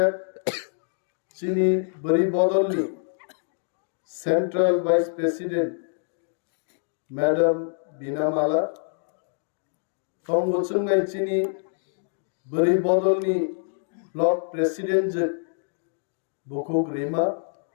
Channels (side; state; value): right; silent; 61 dB below the other